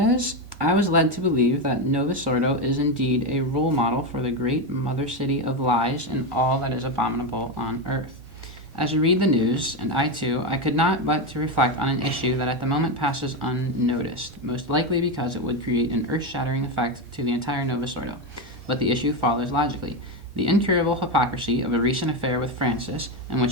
"I was led to believe that Novus Ordo is indeed a role model for the great mother city of lies and all that is abominable on earth. As I read the news, and I too, I could not but to reflect on an issue that at the moment passes unnoticed, most likely because it would create an earth-shattering effect to the entire Novus Ordo. But the issue follows logically. The incurable hypocrisy of a recent affair with Francis, in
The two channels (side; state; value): both; normal; correlation 0.12